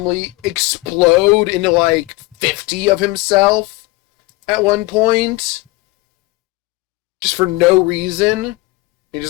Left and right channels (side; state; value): right; quieter; 21.1 dB